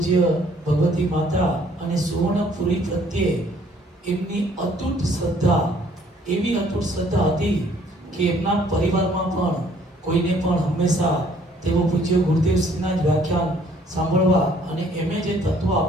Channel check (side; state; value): both; normal; correlation 0.61